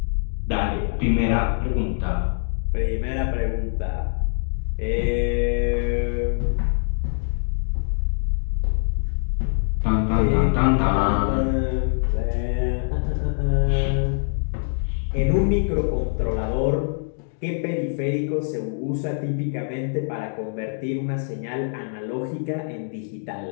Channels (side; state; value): right; silent; digital silence